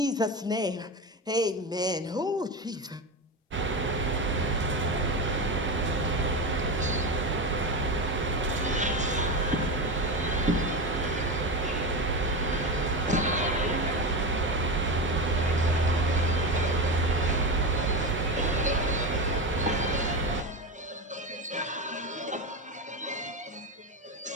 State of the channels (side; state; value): both; normal; correlation 0.19